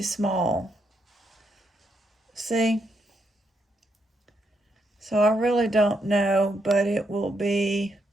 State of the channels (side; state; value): both; normal; correlation 0.78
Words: small. See? So I really don't know, but it will be